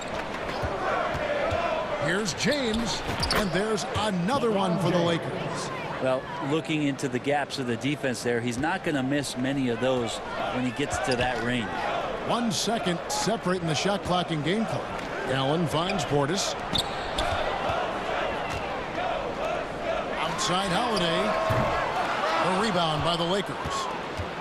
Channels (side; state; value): both; identical; correlation 1.00